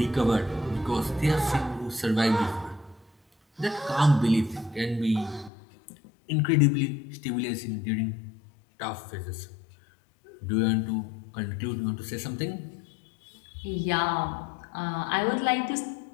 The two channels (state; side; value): drops out; right; at 5.5 s